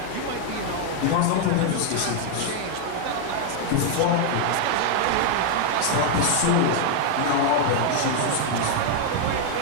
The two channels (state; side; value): different; both; correlation 0.00